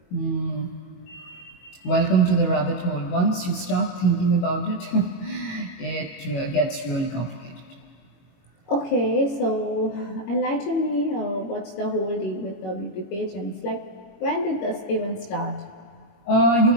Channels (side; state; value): right; late; 21 ms